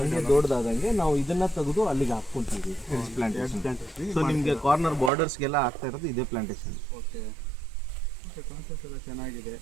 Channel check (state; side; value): drops out; left; at 5.1 s